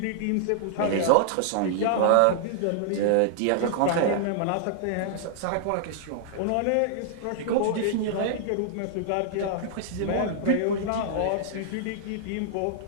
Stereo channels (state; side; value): different; both; correlation -0.01